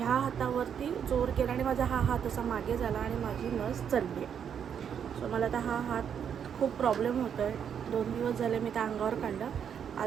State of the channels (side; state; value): left; quieter; 8.1 dB